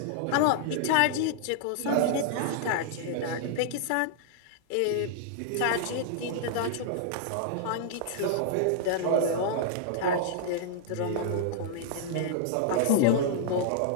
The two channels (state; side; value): different; both; correlation -0.01